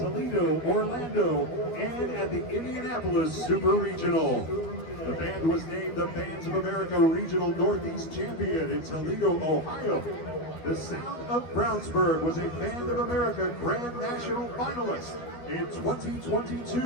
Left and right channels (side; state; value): right; late; 12 ms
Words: Orlando, and at the Indianapolis Super Regional. The band was named the Bands of America Regional Northeast Champion in Toledo, Ohio. The Sound of Brownsburg was a Band of America Grand National finalist in